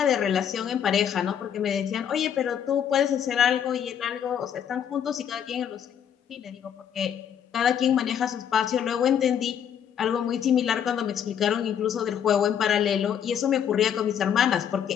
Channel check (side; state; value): right; quieter; 8.8 dB